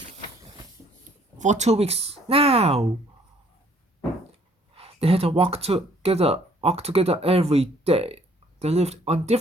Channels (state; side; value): normal; both; correlation 0.62